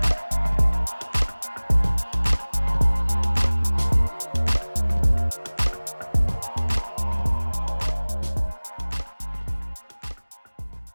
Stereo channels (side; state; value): both; inverted; correlation -1.00